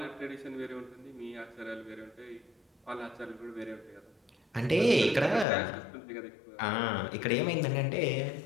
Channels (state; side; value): drops out; right; at 5.5 s